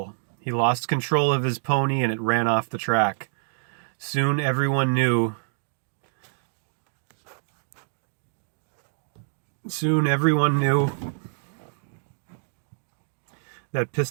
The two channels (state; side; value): silent; left; digital silence